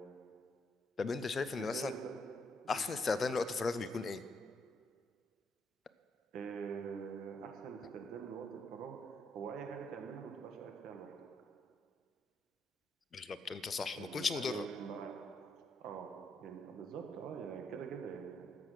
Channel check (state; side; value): normal; both; correlation 0.76